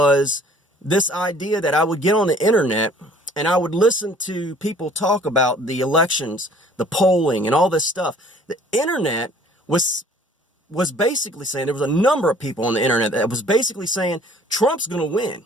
this idea that I would get on the internet and I would listen to people talk about the elections, the polling, and all this stuff. The internet was basically saying, there was a number of people on the internet that was basically saying Trump's going to win,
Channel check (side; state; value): both; normal; correlation 0.54